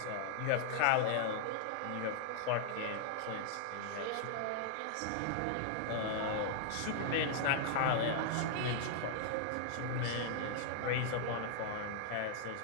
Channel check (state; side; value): different; both; correlation -0.01